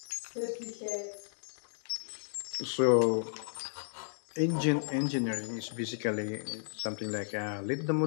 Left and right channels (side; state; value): right; silent; digital silence